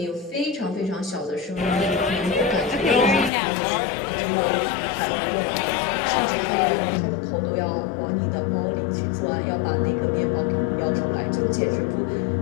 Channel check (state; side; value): drops out; right; at 3.3 s